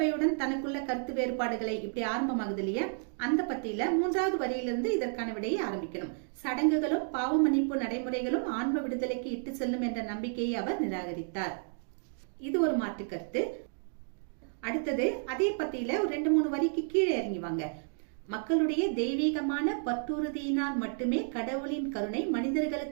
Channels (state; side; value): silent; left; 57 dB below the other